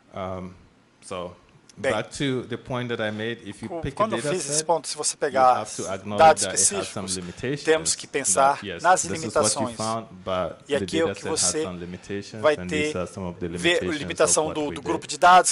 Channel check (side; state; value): both; identical; correlation 1.00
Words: Bem, quando eu fiz esse ponto, se você pegar dados específicos, temos que pensar nas limitações. E aqui é o que você vai ter, ver a limitação do grupo de